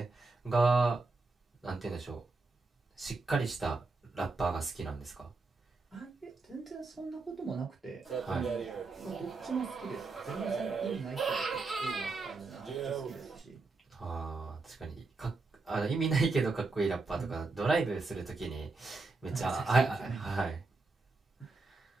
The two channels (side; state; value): left; quieter; 3.8 dB